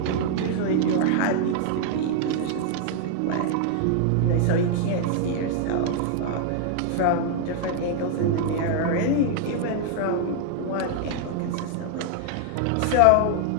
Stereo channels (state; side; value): different; both; correlation -0.01